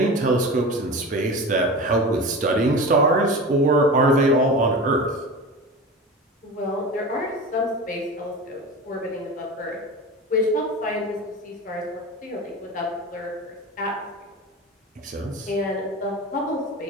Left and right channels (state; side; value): normal; both; correlation 0.30